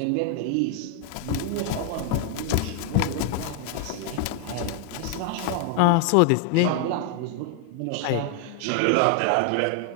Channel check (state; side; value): different; both; correlation 0.00